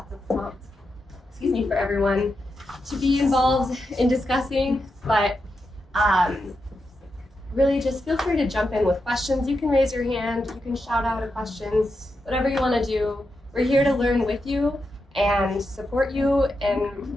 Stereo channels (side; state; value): both; normal; correlation 0.87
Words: of prompts, for everyone to be involved in discussing, but really just feel free to jump in with questions. You can raise your hand, you can shout out a question, whatever you want to do. We're here to learn with you and support you,